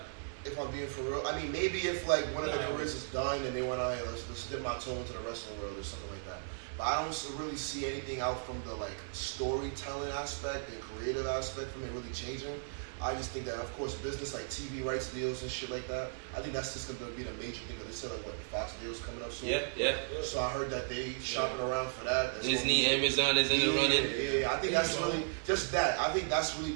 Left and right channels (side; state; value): left; silent; digital silence